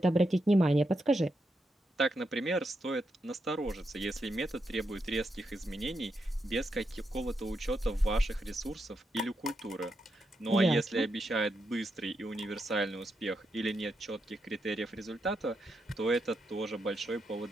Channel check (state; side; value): normal; both; correlation 0.83